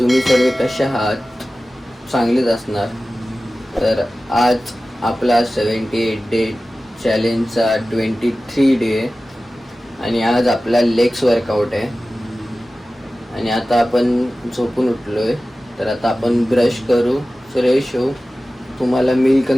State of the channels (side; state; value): both; normal; correlation 0.96